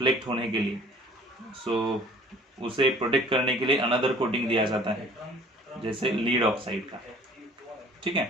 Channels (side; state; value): both; normal; correlation 0.51